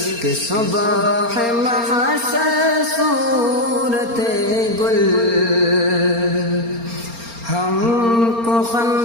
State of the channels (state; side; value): late; left; 4.3 ms